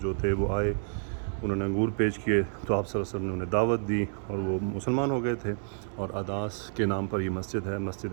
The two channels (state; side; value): silent; left; 57 dB below the other